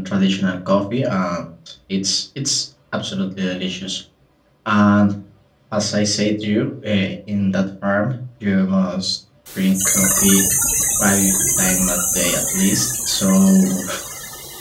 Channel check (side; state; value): both; identical; correlation 1.00